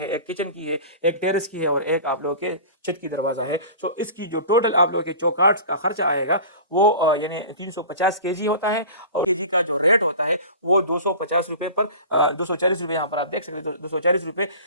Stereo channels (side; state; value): both; inverted; correlation -0.38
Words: एक किचन की है, एक टेरेस की है और एक आप लोगों के छत की दरवाजा है। इसकी जो टोटल आप लोगों के चौकाट का खर्चा आएगा वो यानी 350 केजी होता है और केजी का जो रेट होता है वो 250 रुपए पर 240 रुपए यहाँ पर आप देख सकते हैं, 240 रुपए